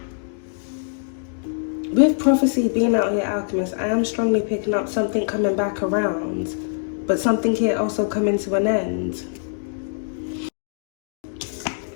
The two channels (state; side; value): silent; right; digital silence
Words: With prophecy being out here, Alchemist, I am strongly picking up something coming back around, but something here also coming to an end.